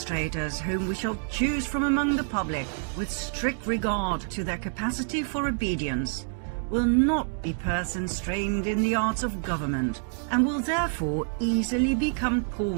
whom we shall choose from among the public, with strict regard to their capacity for obedience, will not be persons trained in the arts of government, and will therefore easily become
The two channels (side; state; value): left; silent; 60 dB below the other